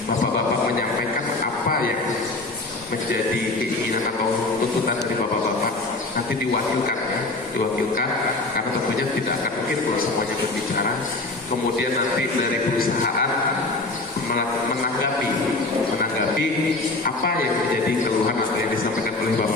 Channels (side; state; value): right; quieter; 3.0 dB